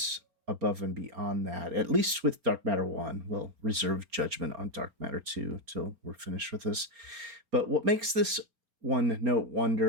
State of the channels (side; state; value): left; late; 4.3 ms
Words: above and beyond that, at least with Dark Matter 1, we'll reserve judgment on Dark Matter 2 till we're finished with this. But what makes this one-note